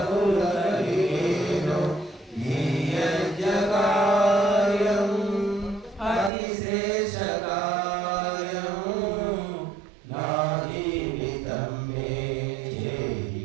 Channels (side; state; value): left; drops out; at 6.3 s